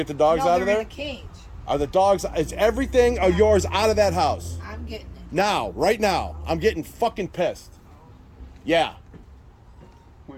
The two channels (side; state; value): both; identical; correlation 1.00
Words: the dogs no, out of they're there? in a cage. Are the dogs? Is everything of yours out of that house I'm getting it. now? Right now, I'm getting fucking pissed. Yeah,